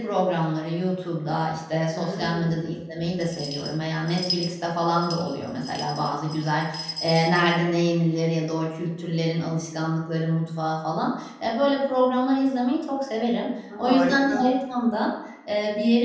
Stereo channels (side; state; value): both; identical; correlation 1.00